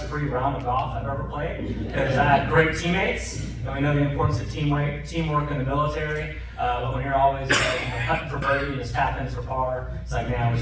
round of golf I've ever played because I had great teammates. And we know the importance of teamwork in the military. But when you're always hunting for birdie and tap ins for par, it's like, man, I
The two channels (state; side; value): identical; both; correlation 1.00